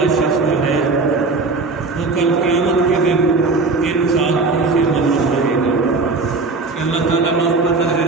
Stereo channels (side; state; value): left; quieter; 3.8 dB